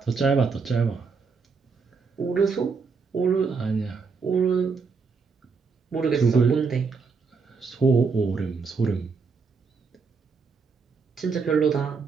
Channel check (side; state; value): left; quieter; 5.0 dB